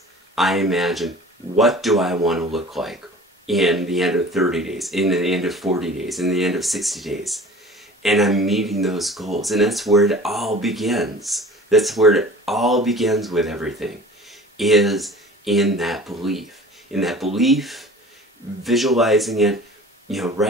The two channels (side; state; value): both; normal; correlation 0.43